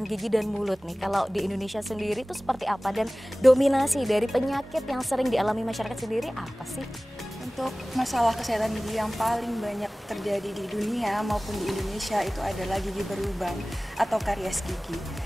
gigi dan mulut nih, kalau di Indonesia sendiri itu seperti apa dan dominasi dari penyakit yang sering dialami masyarakat sendiri apa sih? Untuk masalah kesehatan gigi yang paling banyak terjadi di dunia maupun di Indonesia itu adalah gigi berlubang atau karies gigi.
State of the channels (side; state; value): both; normal; correlation 0.98